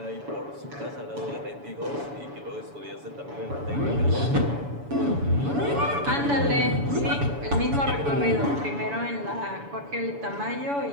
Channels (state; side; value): late; left; 7.0 ms